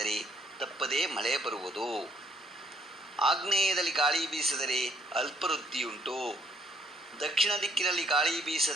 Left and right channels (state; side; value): normal; both; correlation 0.66